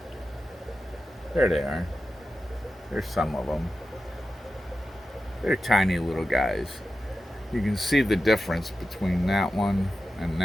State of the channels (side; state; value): both; normal; correlation 0.92